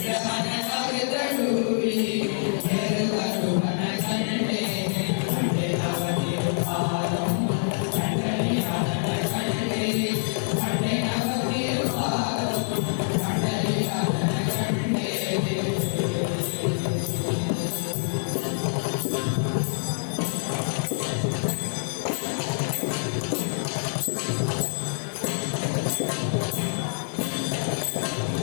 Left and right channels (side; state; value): right; silent; digital silence